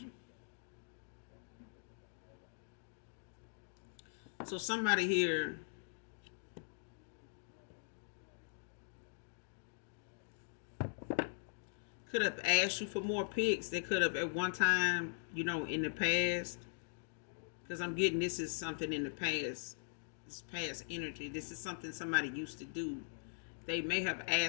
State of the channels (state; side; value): silent; right; digital silence